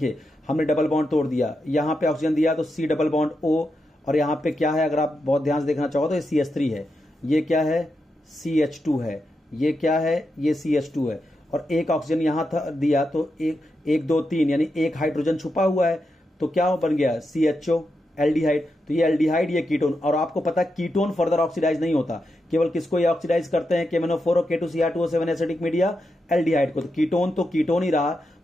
हमने डबल बॉन्ड तोड़ दिया, यहां पे ऑक्सीजन दिया तो C डबल बॉन्ड O, और यहां पे क्या है? अगर आप बहुत ध्यान से देखना चाहो तो ये CH3 है, ये क्या है? CH2 है, ये क्या है? ये CH2 है। और एक ऑक्सीजन यहां था दिया तो एक 2 3 यानी एक हाइड्रोजन छुपा हुआ है, तो क्या बन गया? CHO, aldehyde. तो ये एल्डिहाइड, ये कीटोन। और आपको पता है कीटोन फर्दर ऑक्सीडाइज नहीं होता, केवल किसको ये ऑक्सीडाइज करते हैं? KMnO4 और K2Cr2O7 एसिडिक मीडिया, एल्डिहाइड को। तो कीटोन तो कीटोन ही रहा,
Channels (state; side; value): normal; both; correlation 0.86